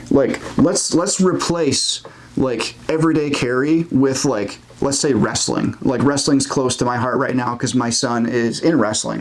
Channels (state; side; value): identical; both; correlation 1.00